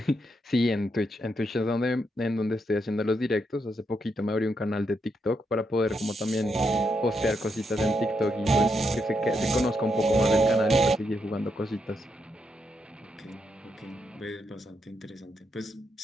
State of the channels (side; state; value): both; normal; correlation 0.81